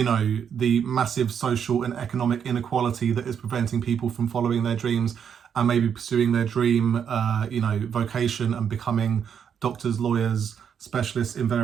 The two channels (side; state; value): left; quieter; 7.8 dB